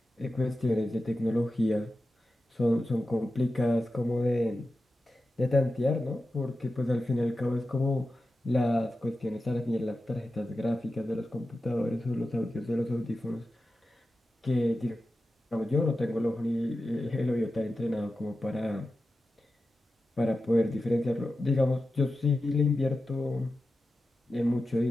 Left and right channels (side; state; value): both; normal; correlation 0.92